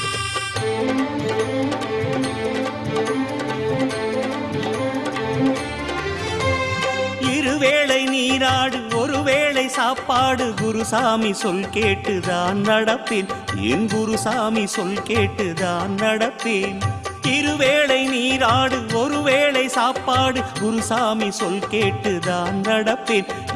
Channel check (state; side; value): identical; both; correlation 1.00